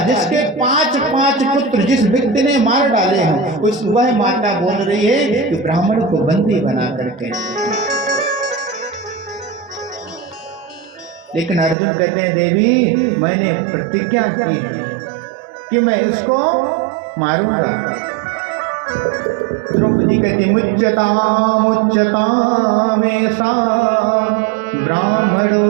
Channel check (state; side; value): drops out; left; at 11.8 s